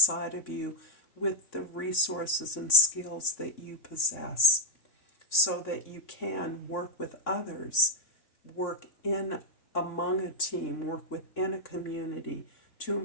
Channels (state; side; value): late; right; 3.6 ms